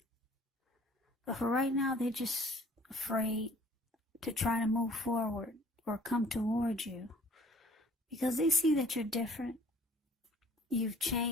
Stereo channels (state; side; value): normal; both; correlation 0.53